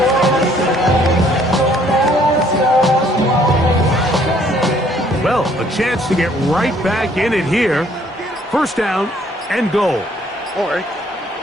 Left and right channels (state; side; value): normal; both; correlation 0.62